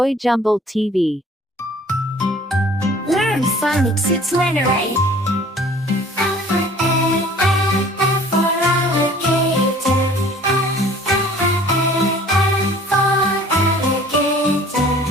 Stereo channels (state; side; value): normal; both; correlation 0.51